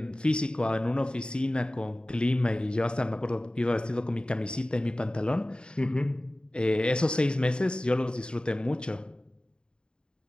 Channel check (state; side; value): late; right; 0.050 ms